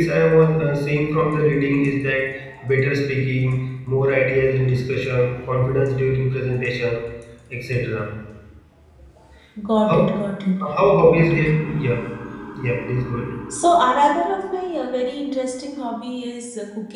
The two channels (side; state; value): both; identical; correlation 1.00